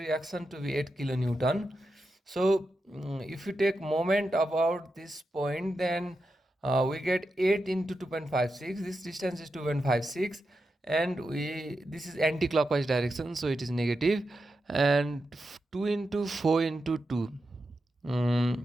to be 8 kilonewton. So if you take moment about this point, then we get 8 into 2.56. This distance is 2.56, and this is anti-clockwise direction, so it is negative. And 2 into 4 into 2.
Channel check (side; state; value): both; normal; correlation 0.88